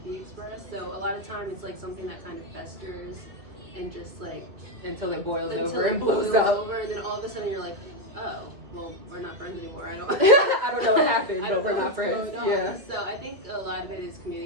be expressed. So a lot of times it's like something that kind of festers and just like until it boils until over it and blows boils up. over, and then all of a sudden you're like, oh, well, we're not friends anymore. I don't. I don't know what happened, I but don't we're know not what's friends. going on. Yeah. So I think a lot of it is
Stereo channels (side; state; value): left; late; 2.3 ms